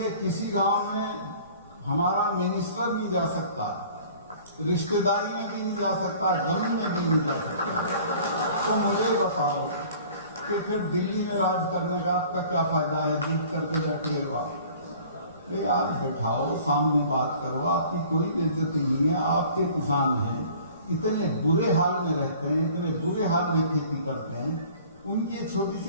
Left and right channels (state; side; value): inverted; both; correlation -0.49